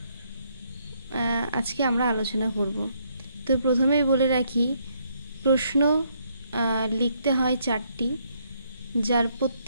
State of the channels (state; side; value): inverted; both; correlation -0.71